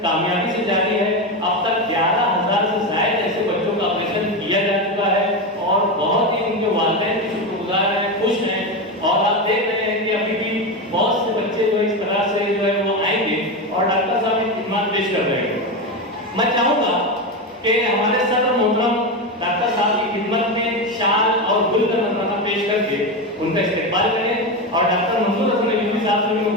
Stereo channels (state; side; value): normal; both; correlation 0.16